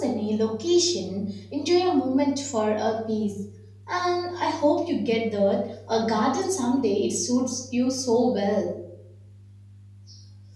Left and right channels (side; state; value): both; identical; correlation 1.00